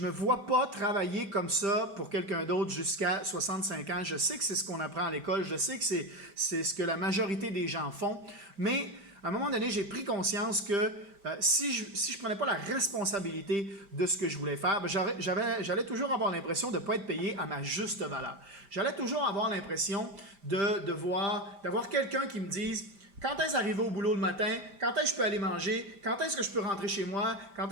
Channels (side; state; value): left; late; 5.0 ms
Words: me vois pas travailler comme ça pour quelqu'un d'autre jusqu'à 65 ans. Je sais que c'est ce qu'on apprend à l'école. Je sais que c'est ce que la majorité des gens font. Mais à un moment donné, j'ai pris conscience que si je ne prenais pas la responsabilité de ce que je voulais faire, j'allais toujours avoir l'impression de ne pas être payé à ma juste valeur. J'allais toujours avoir l'impression d'avoir quelqu'un qui me dise quand est-ce d'arriver au boulot le matin, quand est-ce que je peux aller manger, quand est-ce que je peux rentrer chez moi, quand